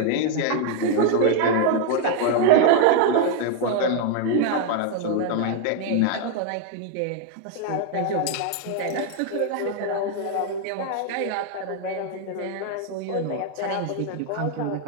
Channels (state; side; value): different; both; correlation 0.00